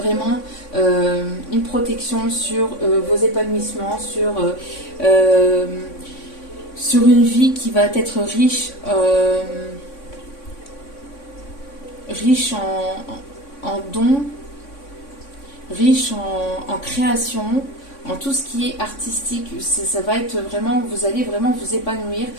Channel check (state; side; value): late; right; 3.6 ms